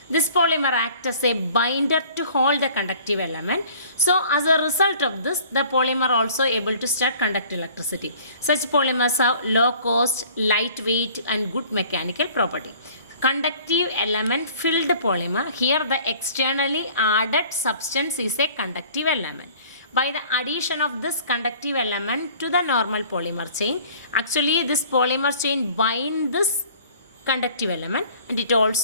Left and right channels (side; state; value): both; inverted; correlation -0.51